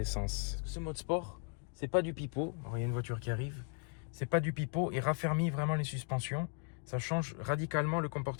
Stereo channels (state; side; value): quieter; right; 39.7 dB